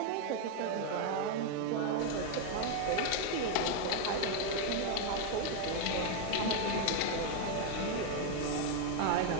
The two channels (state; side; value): different; both; correlation 0.01